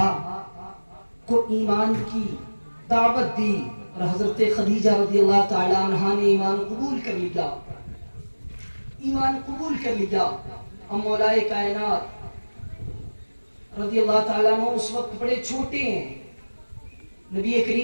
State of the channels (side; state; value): both; inverted; correlation -1.00